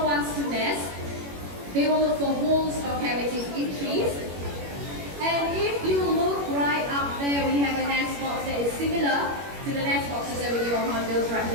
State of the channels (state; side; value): late; left; 21 ms